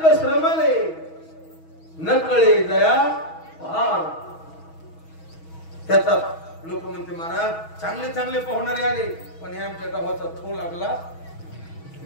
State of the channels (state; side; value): late; right; 6.2 ms